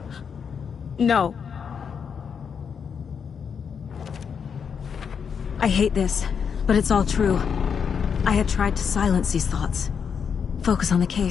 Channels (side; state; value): right; quieter; 6.8 dB